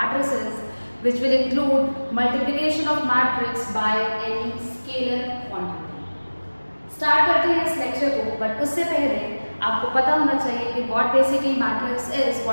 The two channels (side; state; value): both; inverted; correlation -1.00